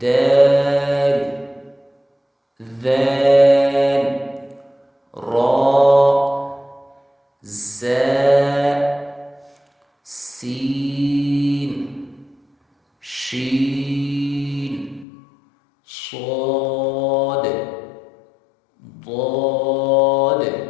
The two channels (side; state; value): right; drops out; at 15.1 s